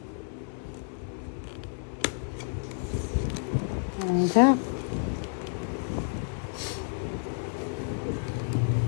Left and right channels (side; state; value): right; silent; 58 dB below the other